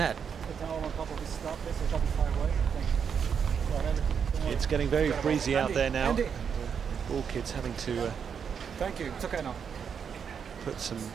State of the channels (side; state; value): left; quieter; 7.0 dB